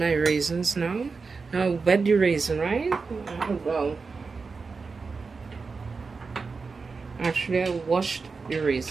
raisins now. Now wet the raisin, right? Well, actually I washed the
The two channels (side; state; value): left; quieter; 4.6 dB